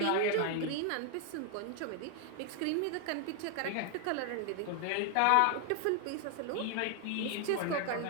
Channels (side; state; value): both; different; correlation 0.00